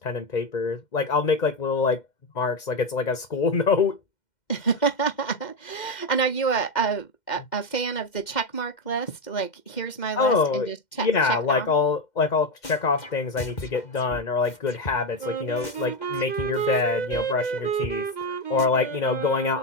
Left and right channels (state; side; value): late; right; 2.1 ms